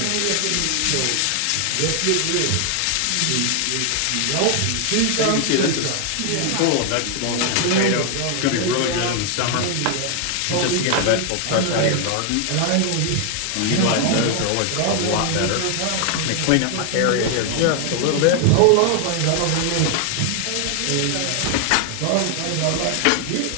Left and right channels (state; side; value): different; both; correlation 0.00